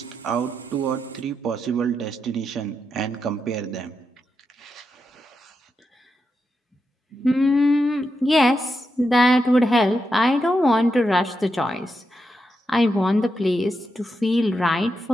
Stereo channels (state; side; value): normal; both; correlation 0.85